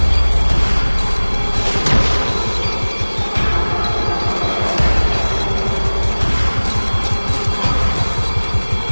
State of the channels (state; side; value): inverted; both; correlation -1.00